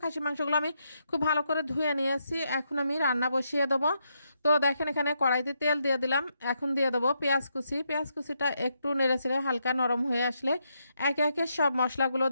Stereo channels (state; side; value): inverted; both; correlation -0.80